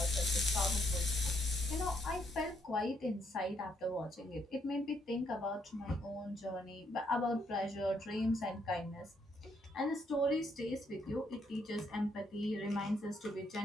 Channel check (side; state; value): both; normal; correlation 0.73